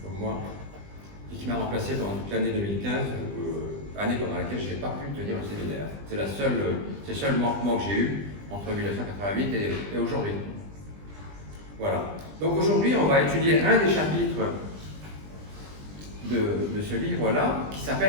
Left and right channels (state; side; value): late; left; 20 ms